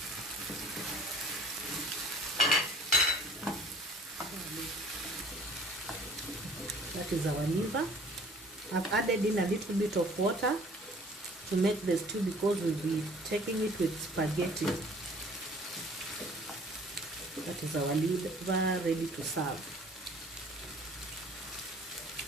That is our liver. I've added in a little bit of water to make the stew, because we'll be taking it with spaghetti. That is our liver ready to serve.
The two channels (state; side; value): normal; both; correlation 0.52